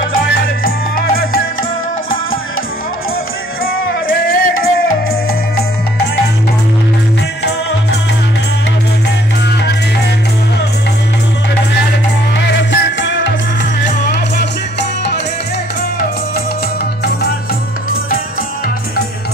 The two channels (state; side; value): normal; both; correlation 0.61